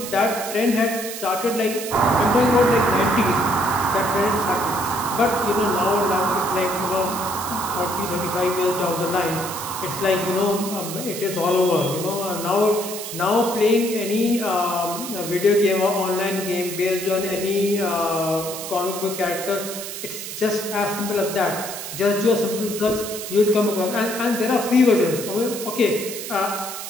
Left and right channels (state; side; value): noise; right; hiss, 8 dB below the sound